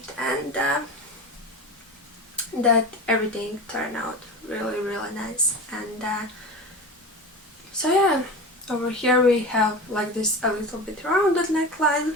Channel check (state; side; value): normal; both; correlation 0.29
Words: and that everything turned out really nice. And so yeah, over here we have like this a little bit rounded neckline,